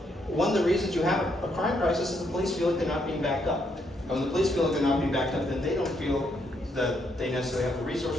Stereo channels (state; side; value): normal; both; correlation 0.75